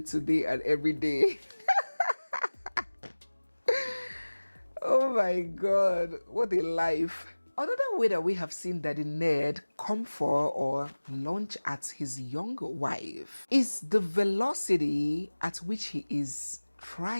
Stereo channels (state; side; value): inverted; both; correlation -1.00